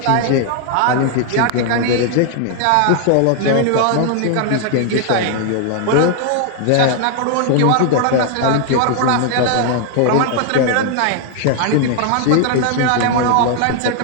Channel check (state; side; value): different; both; correlation 0.00